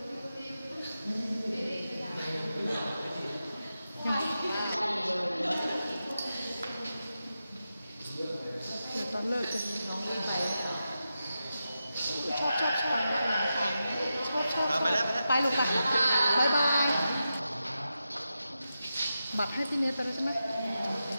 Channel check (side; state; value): both; inverted; correlation -0.90